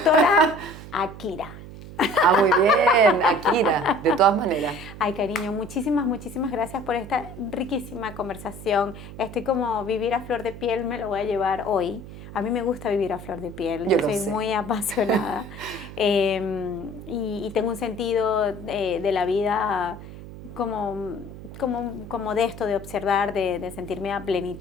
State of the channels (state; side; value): noise; right; hum, 14 dB below the sound